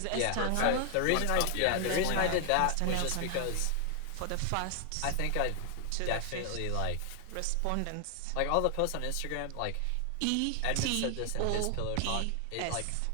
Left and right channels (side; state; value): both; different; correlation 0.00